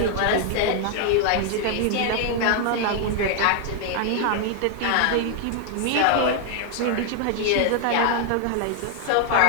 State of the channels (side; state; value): both; different; correlation 0.00